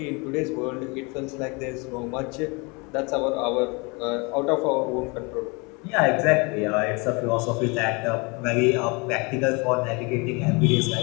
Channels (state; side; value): quieter; right; 29.2 dB